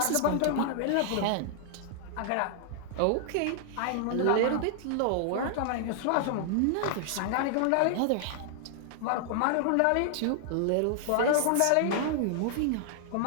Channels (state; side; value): different; both; correlation -0.01